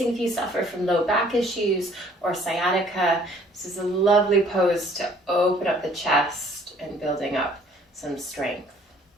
if you suffer from low back issues or sciatica. This is a lovely pose to open up the chest and building up some strength.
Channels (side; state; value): both; normal; correlation 0.57